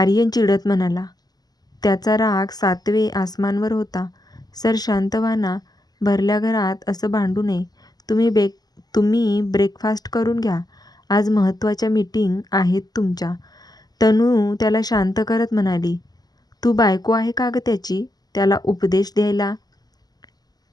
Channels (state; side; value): late; right; 0.19 ms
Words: चिडत म्हणाला. त्याचा राग 7वे आसमानवर होता. सर शांत व्हा ना. भरल्या घरात असं भांडू नये. तुम्ही ब्रेकफास्ट करून घ्या. आज महत्त्वाच्या मीटिंग आहेत तुमच्या. तनू त्याला शांत करत म्हणाली. तू बायको आहे का ग त्याची, त्याला उपदेश द्यायला?